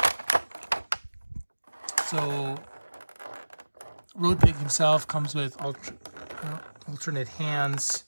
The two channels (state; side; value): inverted; both; correlation -1.00